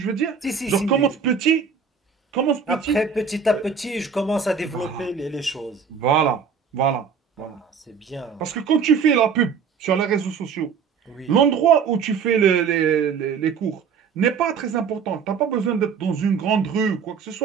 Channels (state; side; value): quieter; left; 6.3 dB